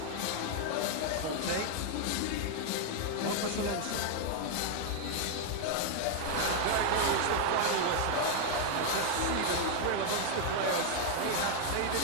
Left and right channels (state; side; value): different; both; correlation 0.00